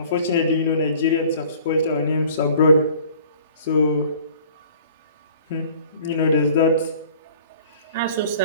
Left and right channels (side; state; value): both; inverted; correlation -0.50